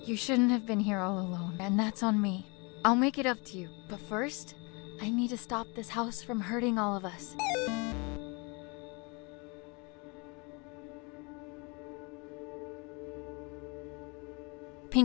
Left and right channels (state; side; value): quieter; right; 29.8 dB